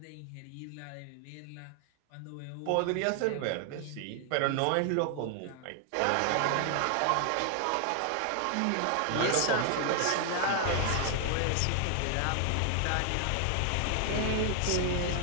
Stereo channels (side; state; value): both; different; correlation 0.00